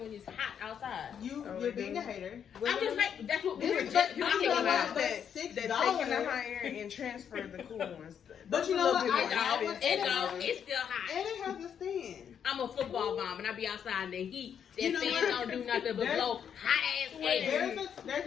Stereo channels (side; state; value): right; quieter; 8.2 dB